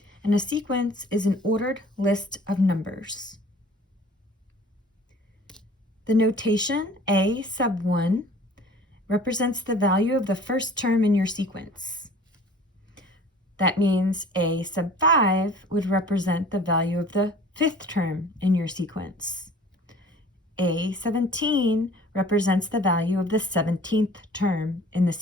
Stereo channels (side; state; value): both; normal; correlation 0.48